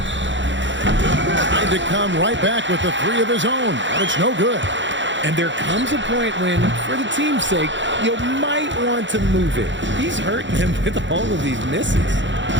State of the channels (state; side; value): late; left; 0.54 ms